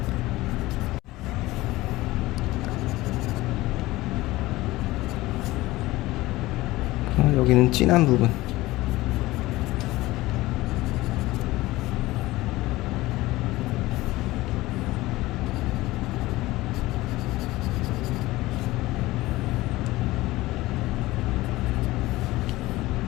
여기는 진한 부분.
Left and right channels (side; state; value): right; quieter; 18.6 dB